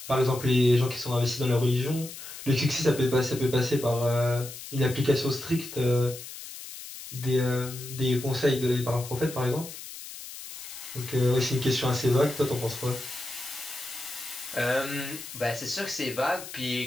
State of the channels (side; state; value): left; noise; hiss, 12 dB below the sound